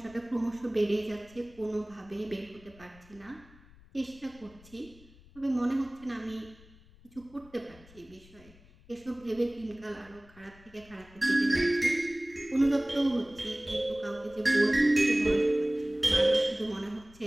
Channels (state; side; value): noise; left; rumble, 24 dB below the sound